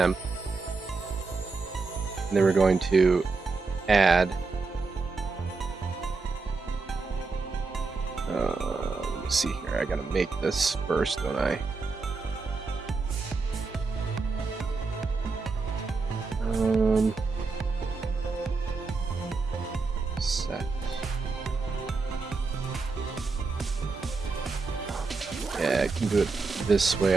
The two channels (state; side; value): quieter; left; 4.2 dB